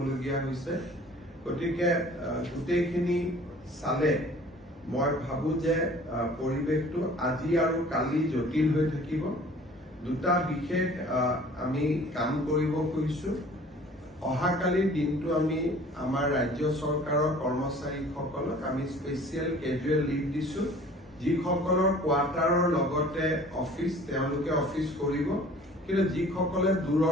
হৈছে। গতিকে গোটেইখিনি চালে মই ভাবো যে পৰিৱেশটো আজি আৰু কালি জটিল হৈ থাকিব। দুটা বিশেষ আমি কাম কৰিব খুজিছো। অহাকালিৰ দিনটো আমি আমাৰ ৰাজ্য চৰকাৰৰ কৰ্মচাৰীসকলক আমি স্পেচিয়েল কেজুৱেল লিভ দিছো। যিসকলৰ কোৱাৰ্টাৰৰ লগতে অফিচ তেওঁলোকে অফিচ কৰিব, কিন্তু যিসকলে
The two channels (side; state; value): both; normal; correlation 0.49